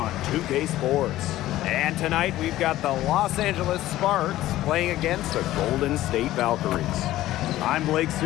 2K Sports. And tonight we've got the Los Angeles Sparks playing against the Golden State Valkyries. I'm Blake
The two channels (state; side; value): quieter; right; 15.1 dB